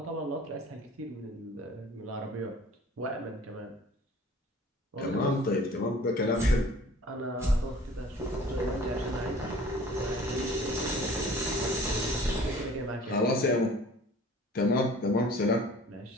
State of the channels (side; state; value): both; normal; correlation 0.49